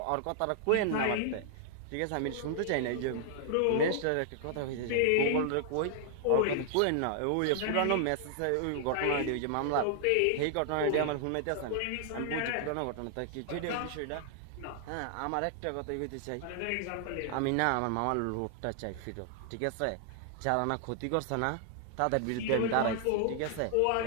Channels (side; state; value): both; different; correlation -0.01